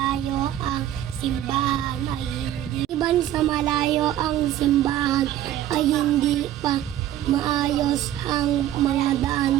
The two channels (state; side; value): quieter; left; 12.5 dB